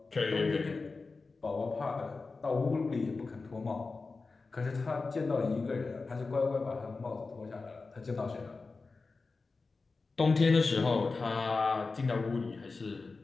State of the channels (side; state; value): right; quieter; 4.0 dB